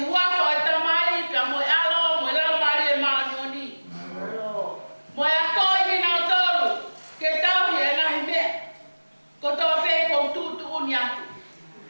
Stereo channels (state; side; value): inverted; both; correlation -1.00